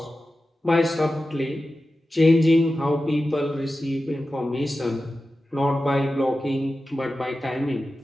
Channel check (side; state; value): both; normal; correlation 0.93